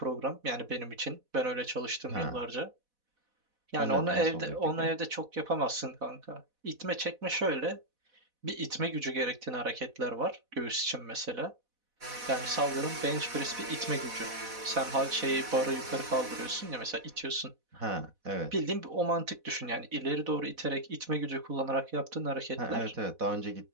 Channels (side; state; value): left; late; 4.1 ms